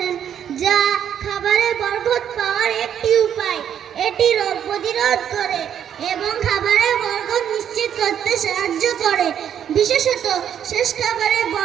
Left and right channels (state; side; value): quieter; left; 9.2 dB